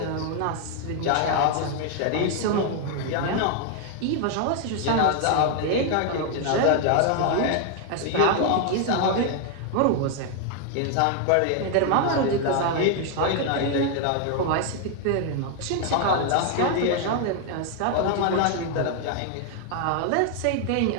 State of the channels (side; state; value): both; different; correlation 0.00